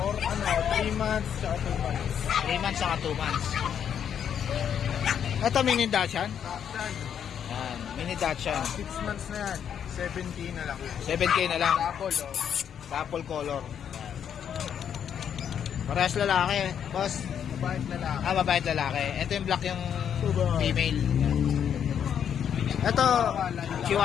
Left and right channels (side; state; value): right; quieter; 8.6 dB